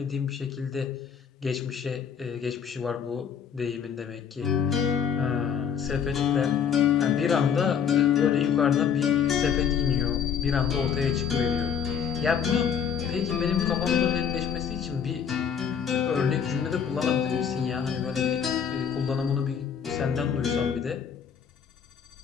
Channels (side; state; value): right; quieter; 7.6 dB